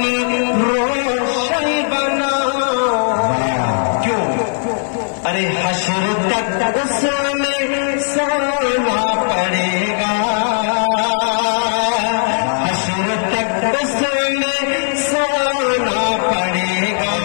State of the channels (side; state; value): right; silent; 68 dB below the other